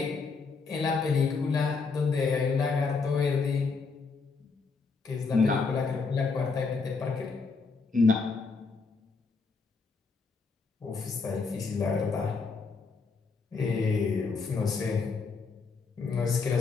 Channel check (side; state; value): right; quieter; 4.6 dB